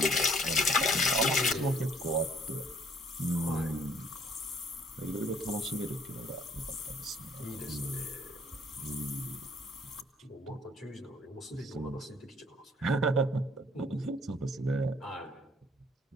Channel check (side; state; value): both; normal; correlation 0.61